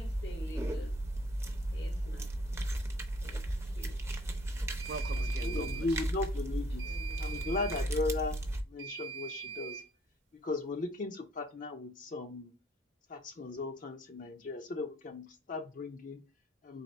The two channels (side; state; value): both; normal; correlation 0.62